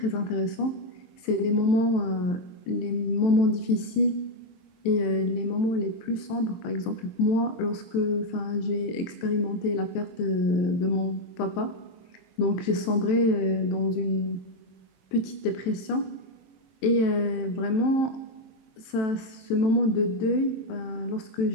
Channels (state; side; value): late; right; 23 ms